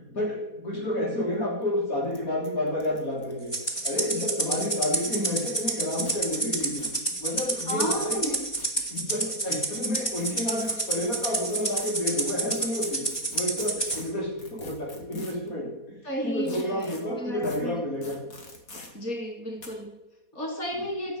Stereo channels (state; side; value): late; right; 4.2 ms